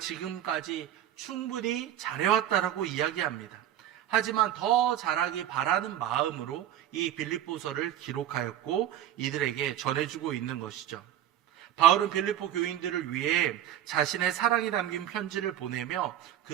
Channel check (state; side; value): quieter; left; 11.4 dB